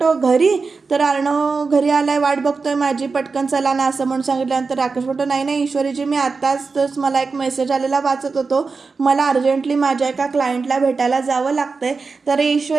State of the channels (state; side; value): quieter; left; 4.5 dB